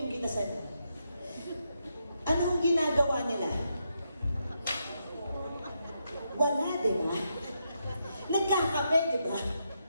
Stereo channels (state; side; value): inverted; both; correlation -0.82